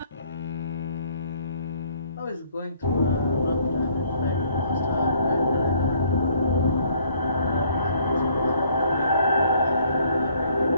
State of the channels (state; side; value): inverted; both; correlation -0.62